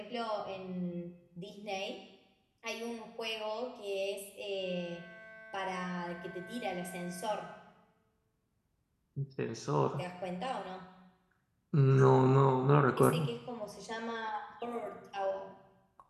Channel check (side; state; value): both; identical; correlation 1.00